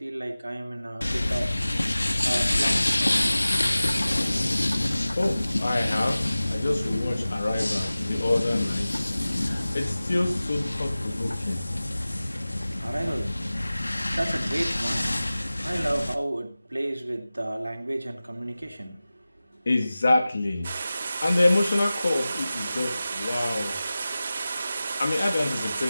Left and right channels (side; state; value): both; inverted; correlation -0.96